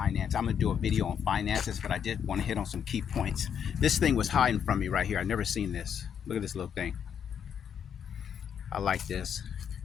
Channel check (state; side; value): quieter; right; 8.1 dB